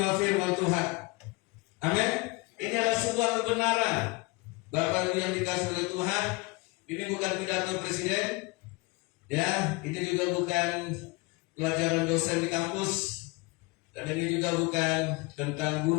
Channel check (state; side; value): quieter; right; 25.7 dB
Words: firman Tuhan. Amin. Ini adalah sebuah kebenaran. Bapak Ibu yang dikasihi oleh Tuhan, ini bukan pidato presiden, ya, ini juga bukan pelajaran dosen di kampus, dan ini juga bukan tentang